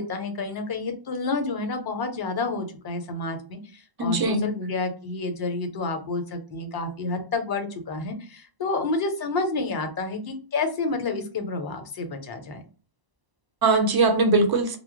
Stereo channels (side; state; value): left; late; 1.0 ms